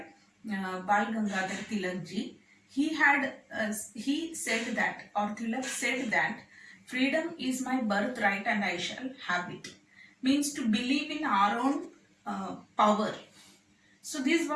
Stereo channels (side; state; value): both; identical; correlation 1.00